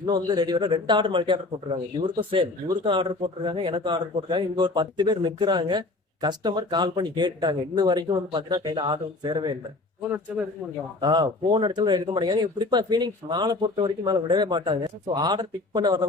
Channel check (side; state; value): right; quieter; 3.1 dB